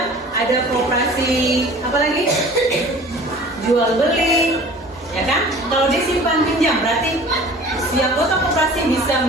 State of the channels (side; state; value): both; normal; correlation 0.45